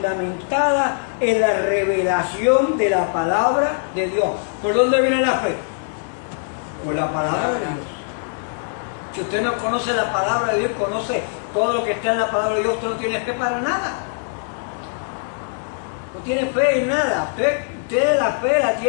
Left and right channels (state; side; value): silent; right; 61 dB below the other